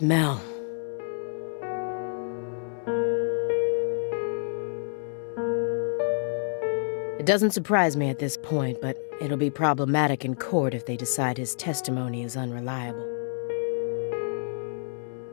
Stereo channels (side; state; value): right; silent; 59 dB below the other